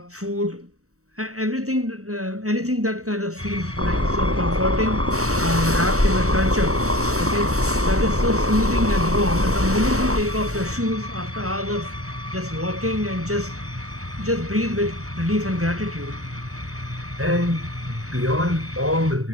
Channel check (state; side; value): late; left; 0.65 ms